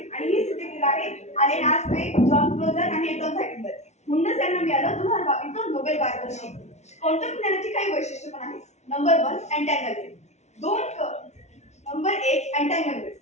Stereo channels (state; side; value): late; right; 0.32 ms